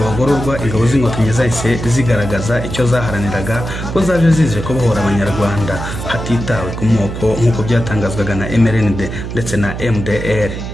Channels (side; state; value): right; noise; hum, 7 dB below the sound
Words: bagororwa, ingabo z'inkotanyi zahise zigaragaza icyo zaharaniraga ko zaje zije kubohora abanyarwanda hatitawe ku moko nk'uko byatangazwaga na MRND ndetse na MDR